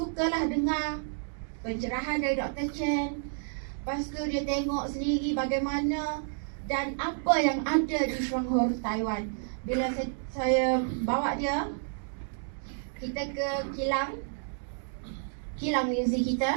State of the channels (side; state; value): left; silent; digital silence